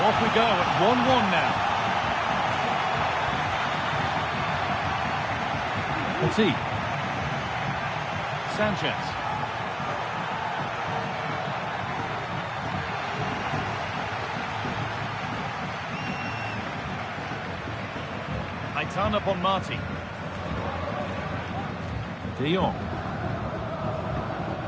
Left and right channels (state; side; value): identical; both; correlation 1.00